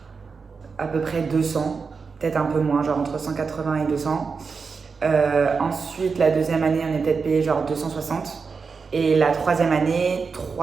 à peu près 200, peut-être un peu moins, genre entre 180 et 200. Ensuite, la 2e année, on est peut-être payé genre 260. Et la 3e année,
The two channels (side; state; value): left; quieter; 5.1 dB